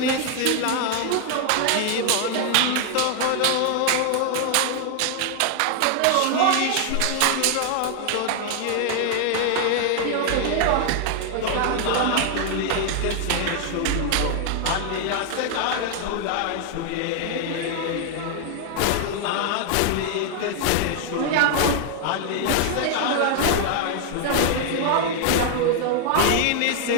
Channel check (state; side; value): different; both; correlation 0.00